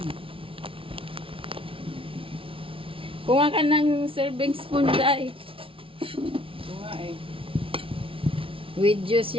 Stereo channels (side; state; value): left; late; 0.26 ms